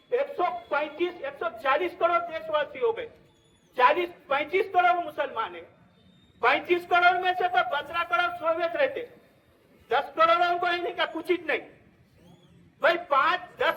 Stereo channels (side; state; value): both; identical; correlation 1.00